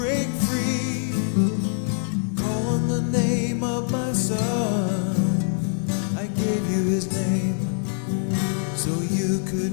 free. Call on the name of my son, I gave you his name so you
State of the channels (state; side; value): silent; right; digital silence